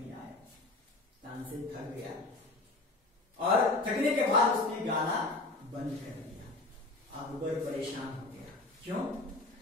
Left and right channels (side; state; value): right; quieter; 3.1 dB